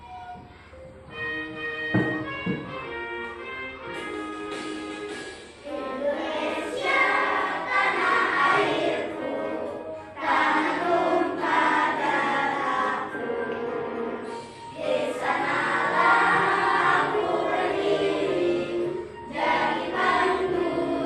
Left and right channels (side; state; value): both; identical; correlation 1.00